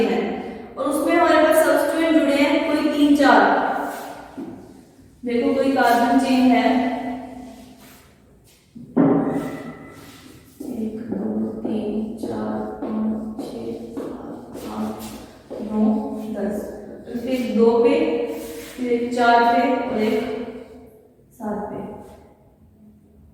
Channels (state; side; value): identical; both; correlation 1.00